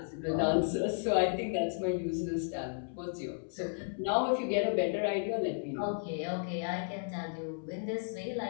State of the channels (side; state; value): right; silent; 55 dB below the other